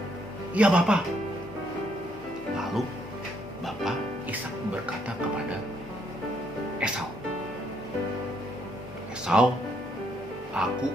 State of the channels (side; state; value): both; normal; correlation 0.72